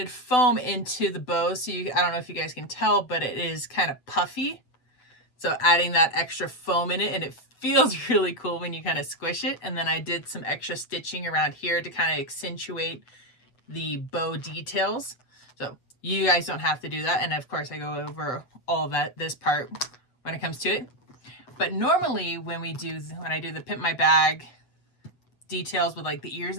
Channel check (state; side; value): late; right; 8.0 ms